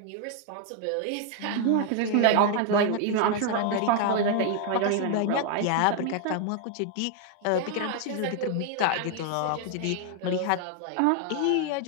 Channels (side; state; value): both; different; correlation 0.00